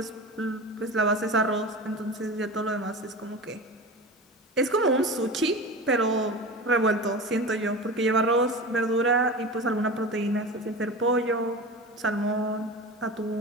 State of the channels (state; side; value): normal; both; correlation 0.30